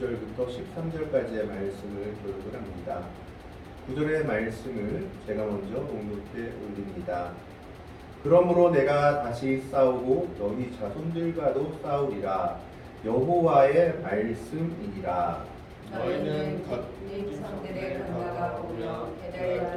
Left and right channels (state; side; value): identical; both; correlation 1.00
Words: 13절까지의 말씀을 교독을 합니다. 9절의 말씀을 제가 먼저 봉독해 올립니다. 그러므로 내가 다시 싸우고 너희 자손들과도 싸우리라. 여호와의 말씀이니라. 너희는 네 조상들의 건너가 오며